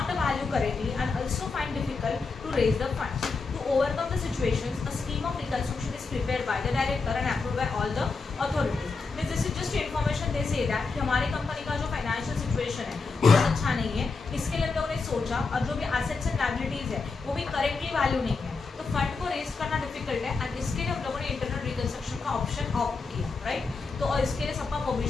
valued correctly and also find difficult to raise the funds. To overcome the situations, a scheme of reconstruction is prepared by the director and approved by all the authorities. Means this is just information they say that कि हमारी company का जो financial situation है वो अच्छा नहीं है, इसके लिए हम लोगों ने सोचा और जो भी एसेट्स एंड लायबिलिटीज है वो भी करेक्टली वैल्यू नहीं है, तो फंड को रेज करना डिफिकल्ट है एंड इसके लिए हम लोगों ने इंटरनल रिकंस्ट्रक्शन का ऑप्शन ऑप्ट किया, राइट. तो और इसके लिए सबका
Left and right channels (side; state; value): right; quieter; 4.3 dB